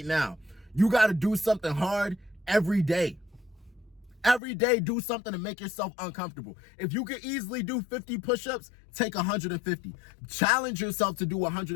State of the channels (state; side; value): drops out; right; at 4.4 s